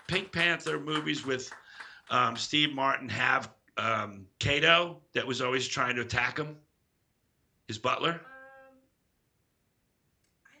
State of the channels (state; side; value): identical; both; correlation 1.00